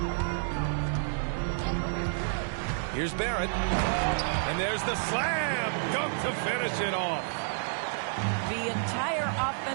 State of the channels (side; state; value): left; silent; digital silence